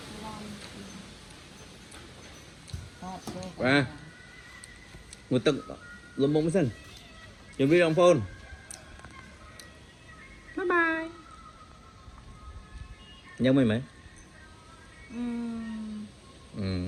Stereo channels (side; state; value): both; identical; correlation 1.00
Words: và người ta lông bóng sinh chuẩn bị đồng phone bye bye nhớ mày mấy